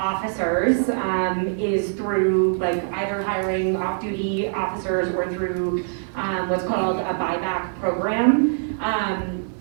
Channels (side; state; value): left; silent; digital silence